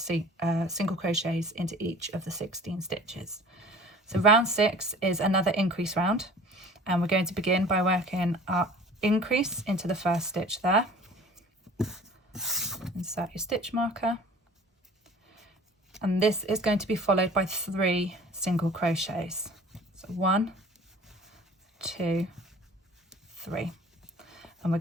crochets into each of the 16 stitches. So round 6 is another increase round, and we're going to begin by working our increase into the first stitch there. Insert your stitch marker, and this is going to be followed by 3 single crochets. So 1, 2, 3. And we're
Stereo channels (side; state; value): both; normal; correlation 0.46